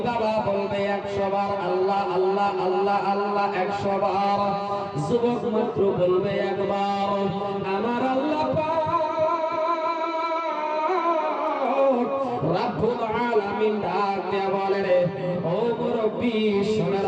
বাবা বলবে 100 বার আল্লাহ আল্লাহ আল্লাহ আল্লাহ 100 বার, যুবক মাত্র বলবে একবার আমার আল্লাহ পাক রব্বুল আলামিন ডাক দেয়া বলে রে ও মুরব্বি শুনে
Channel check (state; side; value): identical; both; correlation 1.00